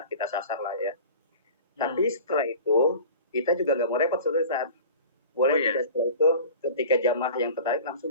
sasar lah ya. Tapi setelah itu kita juga nggak mau repot suatu saat. Boleh tidak setelah itu ketika jamaah yang tertarik langsung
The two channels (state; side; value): inverted; both; correlation -0.39